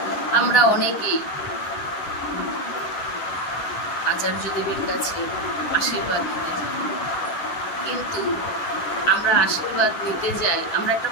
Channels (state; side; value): late; right; 9.9 ms